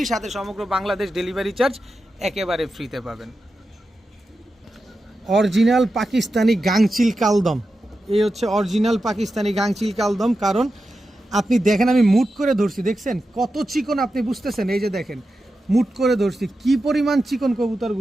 সাথে সমগ্র বাংলাদেশ ডেলিভারি চার্জ একেবারে ফ্রিতে পাবেন। অরিজিনাল পাকিস্তানি গাংচিল কালদম, এই হচ্ছে অরিজিনাল পাকিস্তানি গাংচিল কালদম। কারণ আপনি দেখেন আমি মুট করে ধরছি, দেখছেন কত চিকন, আপনি বুঝতেছেন। এই যে দেখেন মুট করে ধরছি, কি পরিমাণ চিকন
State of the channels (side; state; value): both; normal; correlation 0.90